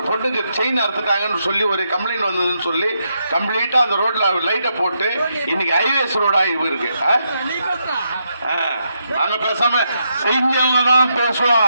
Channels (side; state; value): both; inverted; correlation -0.81